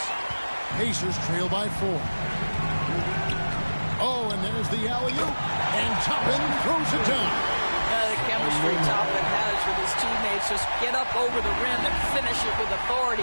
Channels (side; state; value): both; inverted; correlation -1.00